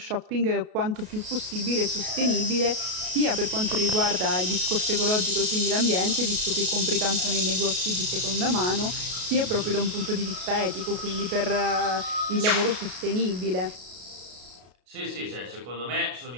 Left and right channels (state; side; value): late; left; 33 ms